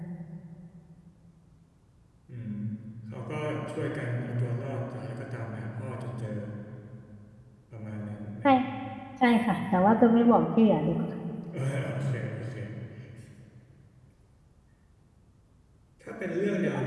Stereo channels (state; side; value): identical; both; correlation 1.00